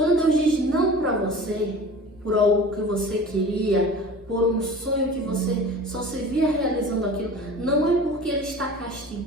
Deus diz não para você, por algo que você queria, por um sonho que você só se via realizando aquilo, não é porque ele está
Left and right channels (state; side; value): normal; both; correlation 0.39